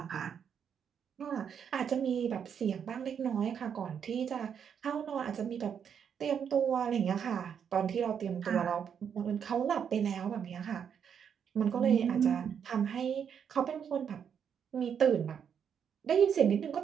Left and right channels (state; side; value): quieter; left; 7.7 dB